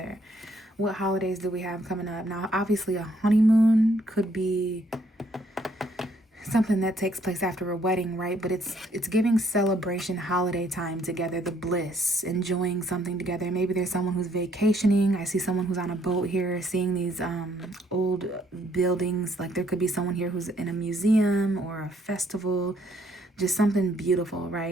What holidays do we have coming up? Now, obviously, a honeymoon could be something that takes place after a wedding, right? But it's giving celebration, holiday time together, the bliss, enjoying something together. Maybe there's someone who's vacationing. I see someone who's on a boat here, seeing these old buildings. Like there could be someone here who's in a museum or a festival, just something beautiful,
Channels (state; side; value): normal; both; correlation 0.67